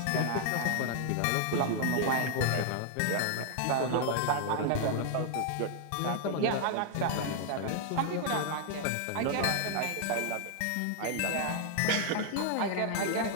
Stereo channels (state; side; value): different; both; correlation -0.01